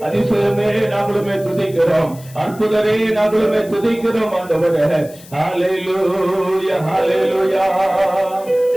அதிசயமே நாங்களுமே துதிக்கிறோம், அற்புதரே நாங்களுமே துதிக்கிறோம் ஆண்டவரே. ஹalleluya ஹalleluya.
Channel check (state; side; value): noise; left; hiss, 21 dB below the sound